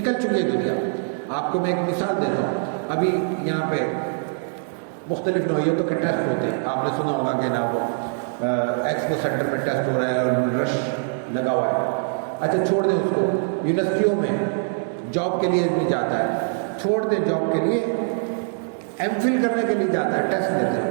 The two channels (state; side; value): silent; left; digital silence